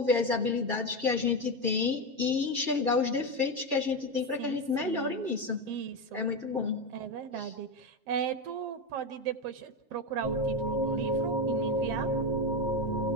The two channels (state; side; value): late; left; 7.6 ms